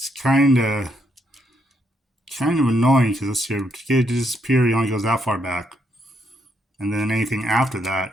kind of annoying because this here, to get it to disappear, it only goes that far back. And then anything after that,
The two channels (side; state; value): both; normal; correlation 0.76